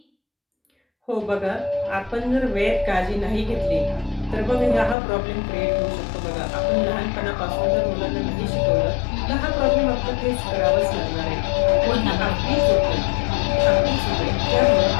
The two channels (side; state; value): right; drops out; at 5.0 s